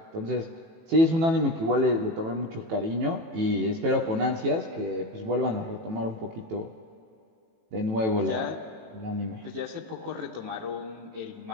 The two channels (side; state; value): left; late; 18 ms